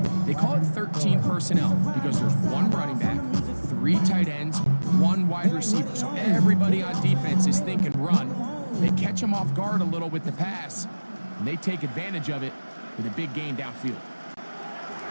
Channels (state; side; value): inverted; both; correlation -1.00